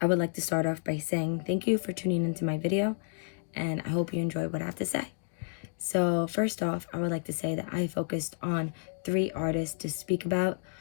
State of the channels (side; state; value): right; silent; 57 dB below the other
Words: I would like to start off by saying thank you for tuning into my video, and I hope you enjoy what I have to say. So first off, I would like to say that I focused on 3 artists to speak about